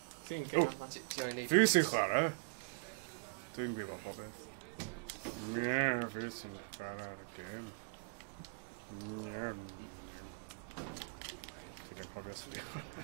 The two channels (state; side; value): quieter; left; 32.3 dB